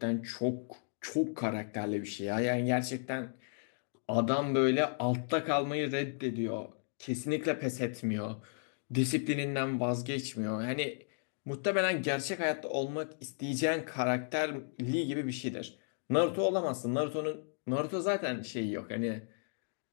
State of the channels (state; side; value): silent; right; digital silence